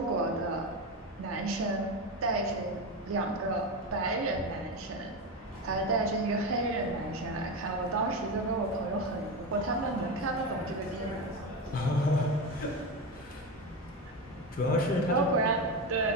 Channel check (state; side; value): normal; both; correlation 0.17